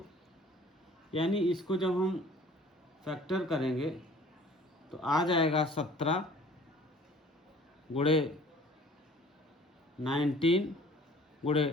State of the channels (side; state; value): both; normal; correlation 0.50